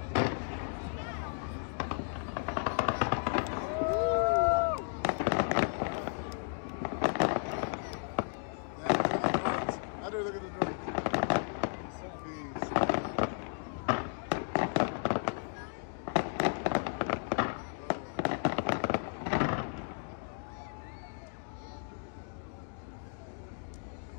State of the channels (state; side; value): silent; right; 55 dB below the other